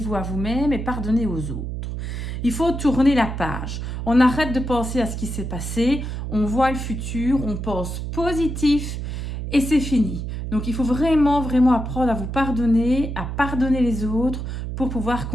à vous-même et pardonnez aux autres. Il faut tourner la page. On arrête de penser à ce qui s'est passé. On voit le futur, on pense positif et c'est fini. Donc, il faut vraiment, vraiment apprendre à vous pardonner, à pardonner les autres pour pouvoir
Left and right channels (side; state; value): right; noise; hum, 5 dB below the sound